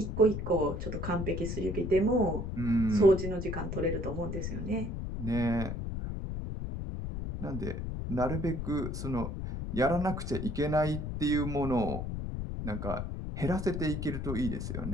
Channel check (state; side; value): noise; left; rumble, 4 dB below the sound